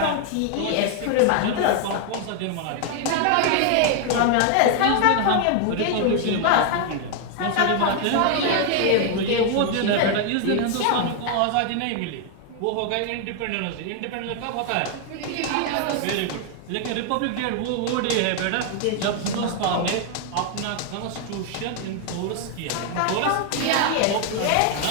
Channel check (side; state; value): both; different; correlation 0.00